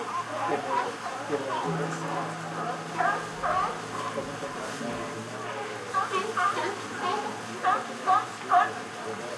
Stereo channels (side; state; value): both; identical; correlation 1.00